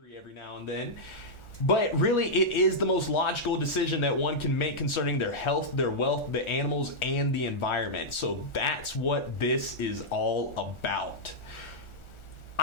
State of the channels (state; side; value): late; right; 1.4 ms